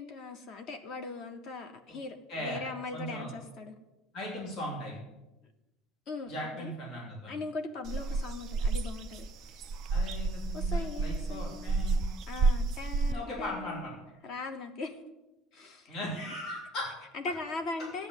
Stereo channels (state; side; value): normal; both; correlation 0.57